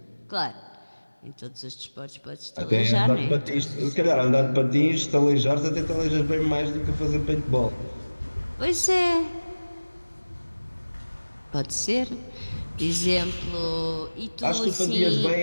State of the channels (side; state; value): both; inverted; correlation -1.00